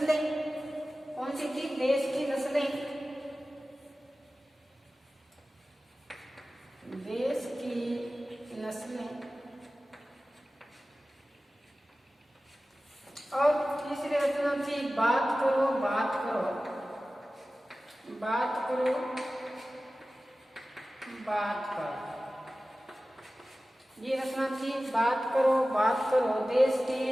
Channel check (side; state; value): both; normal; correlation 0.96